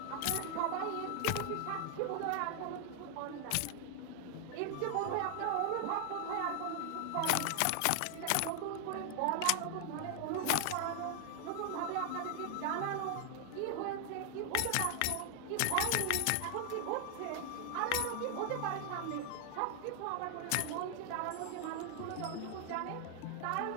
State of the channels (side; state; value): both; different; correlation 0.00